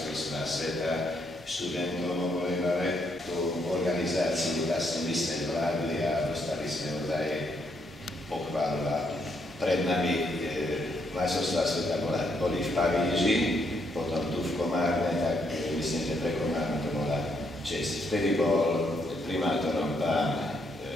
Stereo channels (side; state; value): both; normal; correlation 0.75